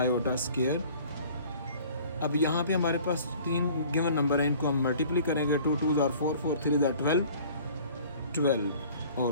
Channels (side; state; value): both; inverted; correlation -0.50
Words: square. अब यहाँ पे हमारे पास 3 गिवन नंबर हैं, इनको हम मल्टीप्लाई करेंगे. 2 2s are 4 4 3s are 12 और